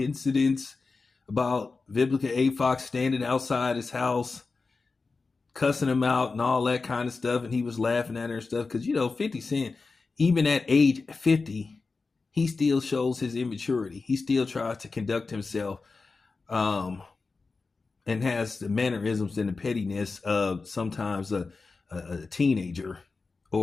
about Vivica A. Fox standing outside his house, cussing him out and all that kind of stuff. And he was laughing at her and stuff. Because, 50 Cent, even at age 50, he still shows his immaturity. He still tries to conduct himself um, and has the mannerisms and the pettiness of sometimes a teenager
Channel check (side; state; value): right; quieter; 4.1 dB